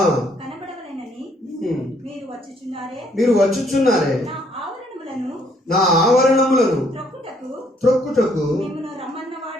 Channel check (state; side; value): normal; both; correlation 0.67